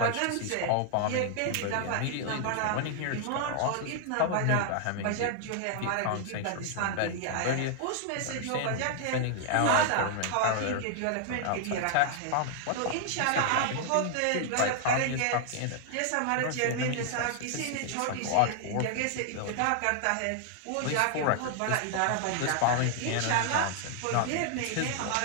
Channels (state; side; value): different; both; correlation 0.00